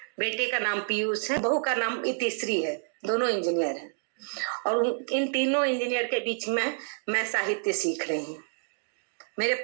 बेटे का नाम पीयूष है, बहू का नाम इतिश्री है। दोनों इंजीनियर हैं और इन तीनों इंजीनियर के बीच में मैं साहित्य सीख रही हूँ। मेरे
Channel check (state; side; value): silent; left; digital silence